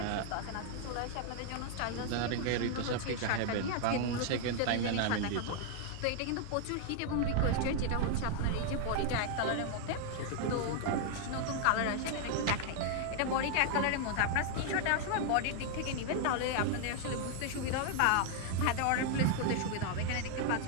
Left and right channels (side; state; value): both; different; correlation 0.00